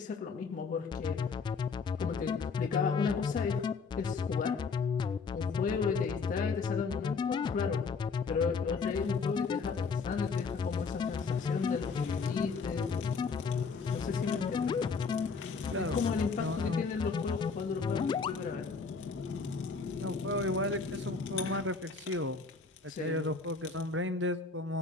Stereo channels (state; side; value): quieter; right; 4.8 dB